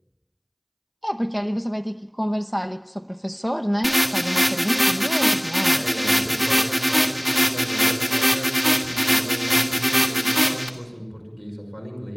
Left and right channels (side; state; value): both; identical; correlation 1.00